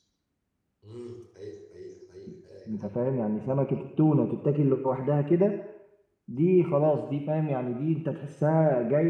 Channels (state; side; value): identical; both; correlation 1.00